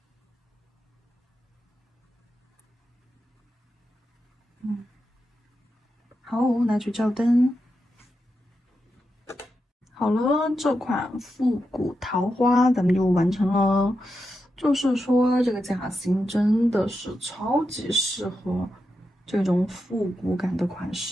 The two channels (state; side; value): normal; both; correlation 0.87